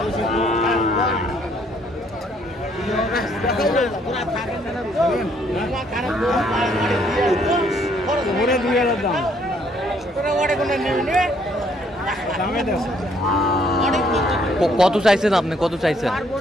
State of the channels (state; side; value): normal; both; correlation 0.66